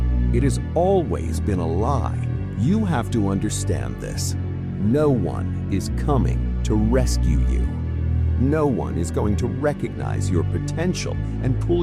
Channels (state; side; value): identical; both; correlation 1.00